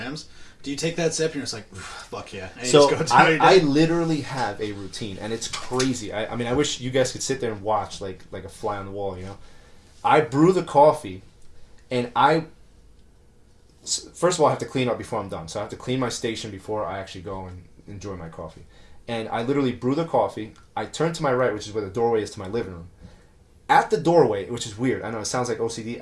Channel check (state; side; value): identical; both; correlation 1.00